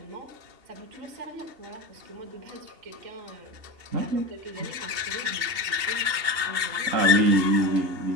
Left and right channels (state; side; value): late; left; 2.8 ms